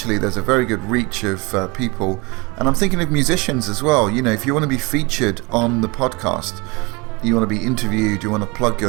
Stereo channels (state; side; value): quieter; left; 26.5 dB